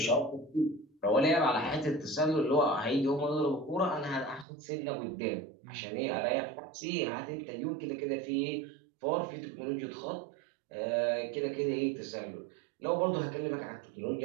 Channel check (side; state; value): left; drops out; at 4.5 s